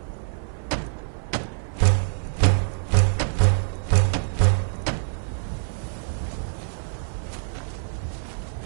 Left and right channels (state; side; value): silent; left; 61 dB below the other